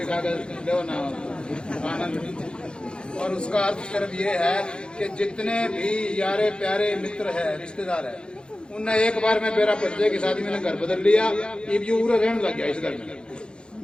खा कर लो ना आनंद। और उसका अर्थ सिर्फ ये है कि जितने भी यारे प्यारे मित्र है, रिश्तेदार है, उनने एक बार में मेरा बच्चे की शादी में घर बदल लिया, ये पूरा रहने लग गया इस घर में,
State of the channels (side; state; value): right; late; 0.051 ms